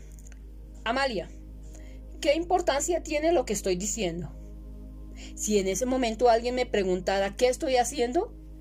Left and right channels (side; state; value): both; identical; correlation 1.00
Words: Amalia, ¿qué importancia tiene lo que estoy diciendo? Si en ese momento alguien me preguntara ¿qué estoy haciendo?,